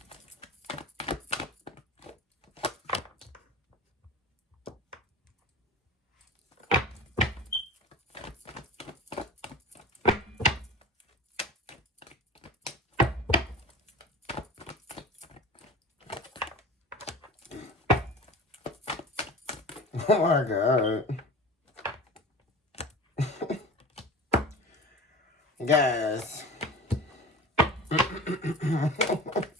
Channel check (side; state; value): both; normal; correlation 0.35